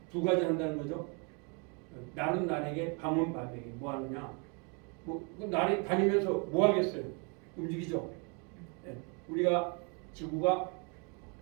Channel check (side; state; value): left; quieter; 34.9 dB